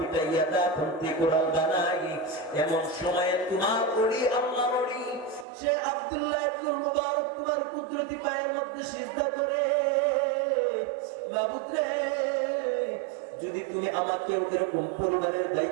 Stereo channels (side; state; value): left; drops out; at 5.5 s